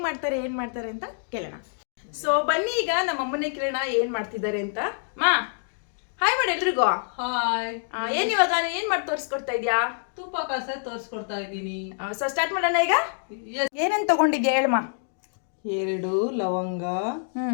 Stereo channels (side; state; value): right; silent; digital silence